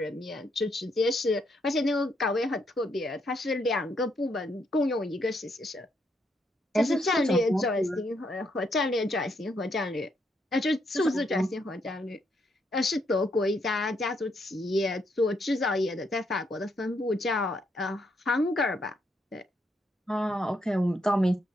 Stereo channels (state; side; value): normal; both; correlation 0.76